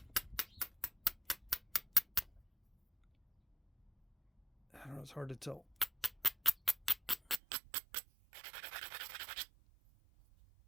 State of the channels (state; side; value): drops out; left; at 7.4 s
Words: don't know, it's hard to tell.